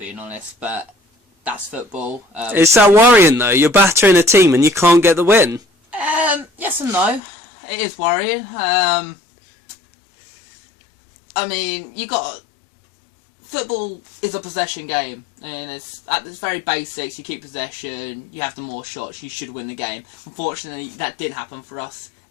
honest, but that's football. Is that worrying, though? You're battering a team and you can't get the win? Yes and no. It is worrying. I mean, football is a possession game, and it's at its very basics. You keep possession, you have the more shots, you should win the game. Unfortunately, that did happen for us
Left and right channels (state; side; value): drops out; right; at 7.2 s